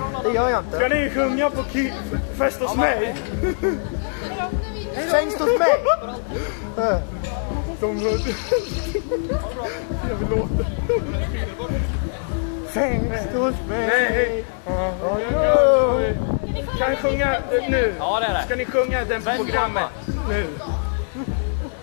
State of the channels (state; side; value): silent; right; digital silence